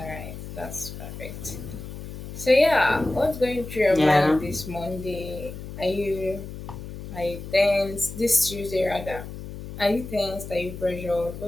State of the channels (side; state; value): left; noise; hum, 10 dB below the sound